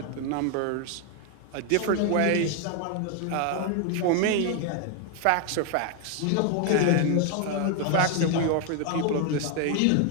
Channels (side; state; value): both; different; correlation 0.01